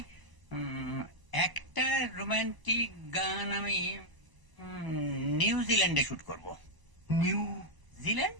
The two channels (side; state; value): left; late; 1.0 ms